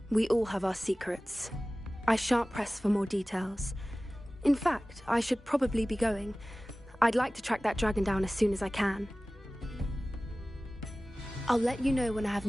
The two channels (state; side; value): normal; both; correlation 0.97